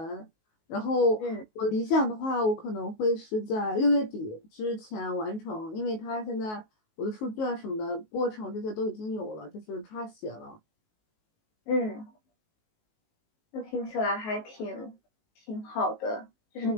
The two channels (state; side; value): late; right; 19 ms